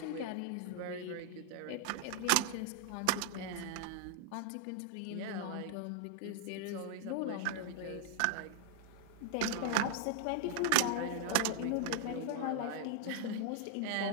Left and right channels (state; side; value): different; both; correlation 0.00